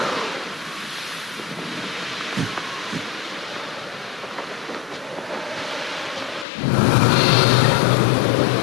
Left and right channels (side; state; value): right; drops out; at 6.5 s